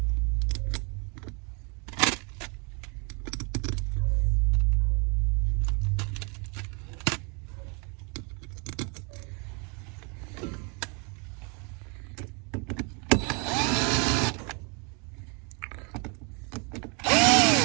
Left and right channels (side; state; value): left; quieter; 33.7 dB